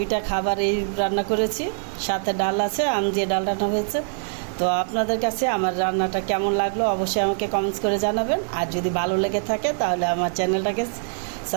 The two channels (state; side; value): silent; left; 63 dB below the other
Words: খাবার এই রান্না করেছি, সাথে ডাল আছে, আম দিয়ে ডাল রান্না হয়েছে। তো আপনাদের কাছে আমার রান্নাটা কেমন লাগলো অবশ্যই আমাকে কমেন্টস করে জানাবেন। আর যদি ভালো লেগে থাকে তাহলে আমার চ্যানেলটাকে